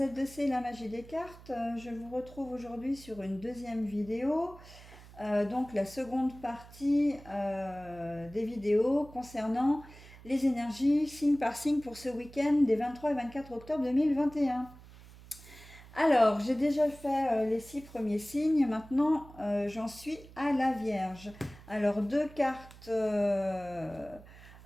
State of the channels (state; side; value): noise; right; hum, 20 dB below the sound